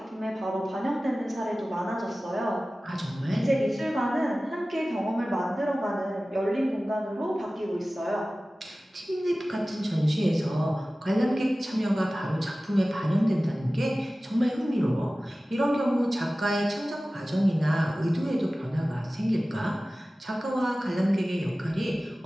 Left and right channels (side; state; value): both; normal; correlation 0.97